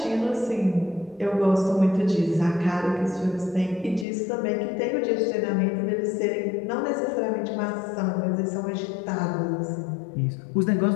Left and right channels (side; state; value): right; drops out; at 4.0 s